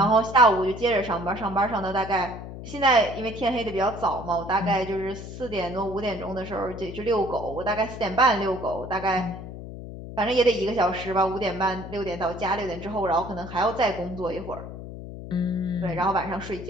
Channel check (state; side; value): noise; left; hum, 11 dB below the sound